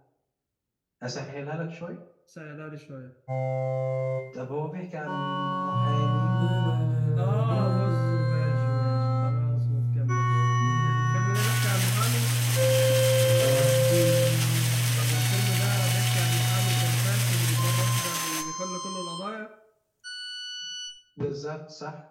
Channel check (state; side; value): identical; both; correlation 1.00